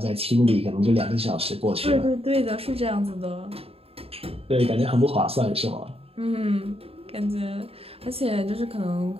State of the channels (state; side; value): late; left; 0.28 ms